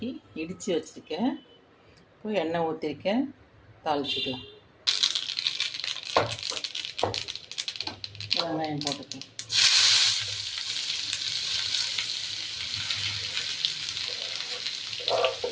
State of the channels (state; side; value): identical; both; correlation 1.00